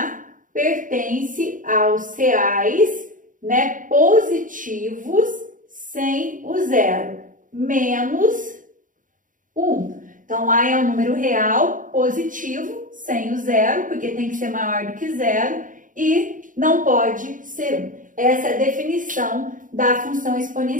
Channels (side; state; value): left; late; 0.38 ms